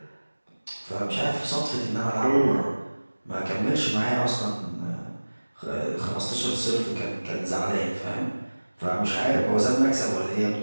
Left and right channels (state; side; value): inverted; both; correlation -1.00